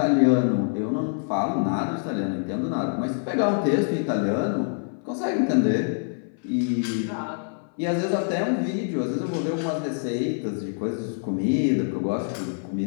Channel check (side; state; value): right; silent; 57 dB below the other